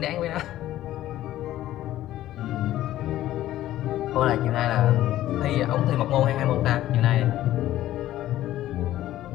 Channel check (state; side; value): quieter; right; 13.9 dB